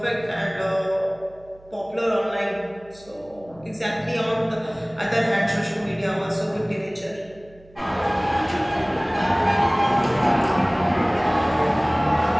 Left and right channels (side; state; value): right; noise; hum, 26 dB below the sound